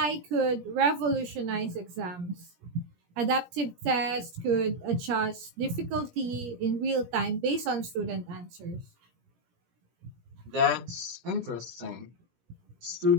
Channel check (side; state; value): left; late; 17 ms